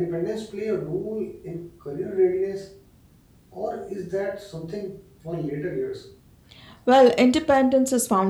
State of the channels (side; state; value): both; identical; correlation 1.00